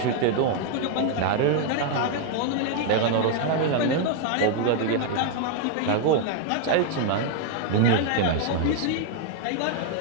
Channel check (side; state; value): both; different; correlation 0.00